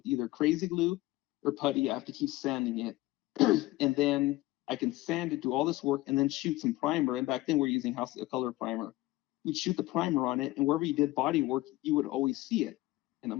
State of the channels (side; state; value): right; quieter; 18.4 dB